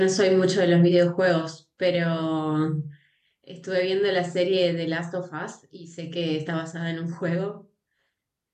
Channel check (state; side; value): identical; both; correlation 1.00